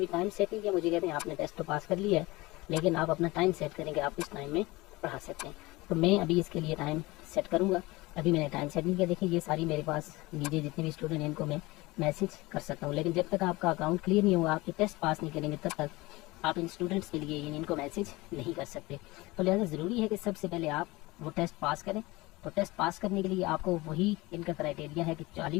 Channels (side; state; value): right; quieter; 21.5 dB